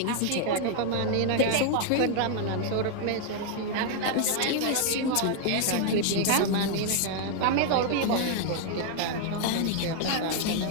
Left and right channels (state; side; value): different; both; correlation 0.00